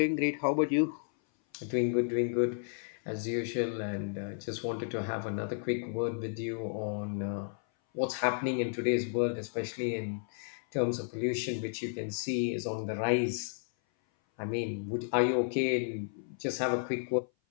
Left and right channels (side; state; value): right; silent; 56 dB below the other